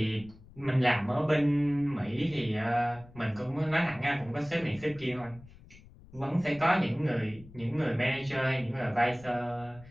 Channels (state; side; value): noise; left; rumble, 22 dB below the sound